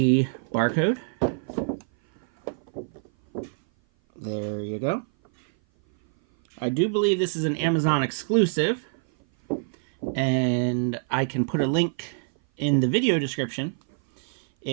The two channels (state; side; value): silent; left; 57 dB below the other